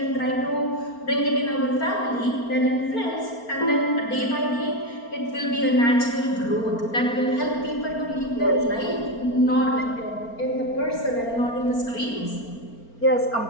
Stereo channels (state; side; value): late; right; 4.4 ms